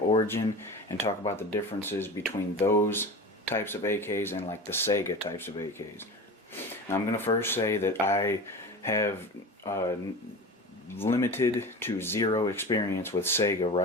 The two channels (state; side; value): normal; both; correlation 0.31